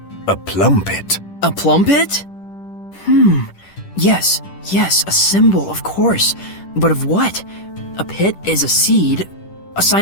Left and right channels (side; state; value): right; late; 10 ms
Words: a plumpet. A plumpet? Yes, a symbol, of course. But of what? A pit is a seed, a